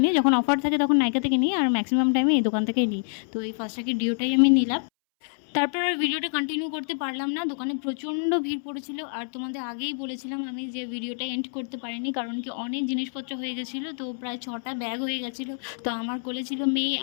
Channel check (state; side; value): silent; right; 61 dB below the other